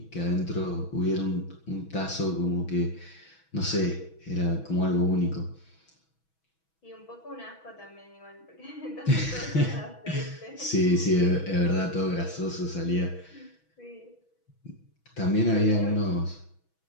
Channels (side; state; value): right; late; 6.2 ms